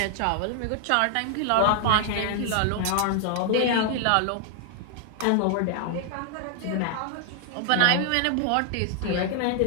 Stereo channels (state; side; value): different; both; correlation 0.00